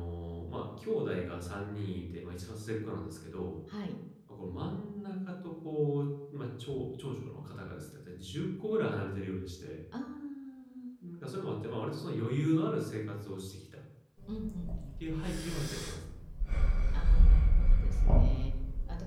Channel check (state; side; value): identical; both; correlation 1.00